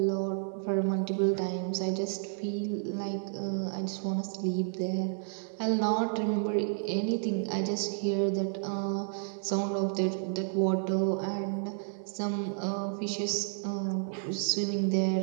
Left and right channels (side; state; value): left; silent; digital silence